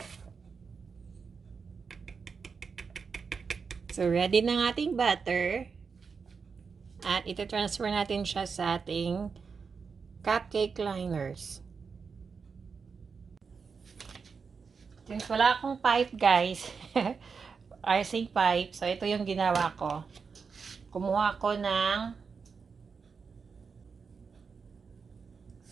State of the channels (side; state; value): left; quieter; 5.5 dB